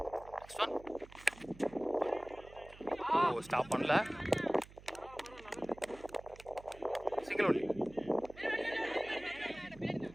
நெக்ஸ்ட் ஒன் ஸ்டாப் பண்ணல. Single only.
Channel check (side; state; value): right; noise; hum, 20 dB below the sound